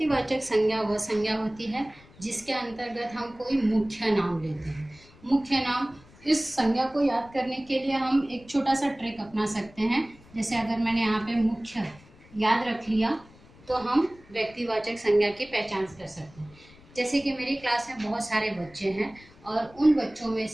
संज्ञा वह संज्ञा होती है जिसके अंतर्गत हम कोई मुख्य नाम लेते हैं। मुख्य नाम, इस संज्ञा को याद करने के लिए हम एक छोटा सा ट्रिक अपना सकते हैं। जैसे अगर मैंने यहाँ पे मुख्य याद रख लिया तो हम व्यक्तिवाचक संज्ञा की पहचान कर सकते हैं। जैसे कि मेरी क्लास में बहुत सारे बच्चे हैं और उन बच्चों में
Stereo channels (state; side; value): noise; left; rumble, 25 dB below the sound